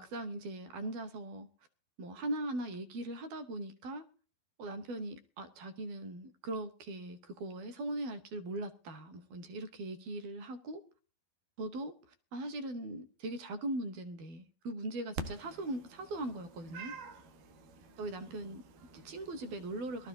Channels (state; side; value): late; left; 12 ms